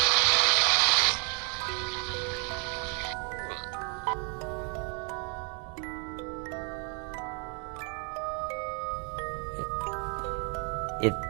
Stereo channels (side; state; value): left; quieter; 38.0 dB